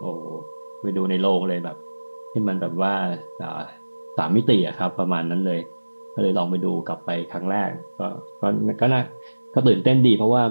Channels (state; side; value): inverted; both; correlation -1.00